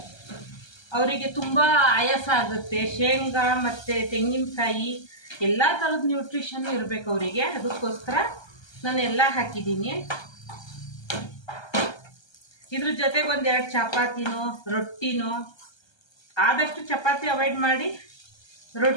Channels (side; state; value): right; late; 1.3 ms